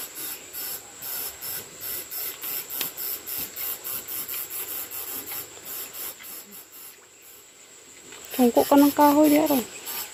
Tungko ka ng kahoy di araw.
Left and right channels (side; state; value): both; identical; correlation 1.00